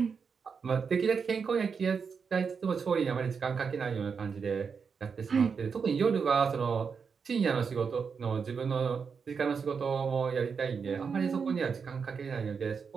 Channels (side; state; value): left; quieter; 5.9 dB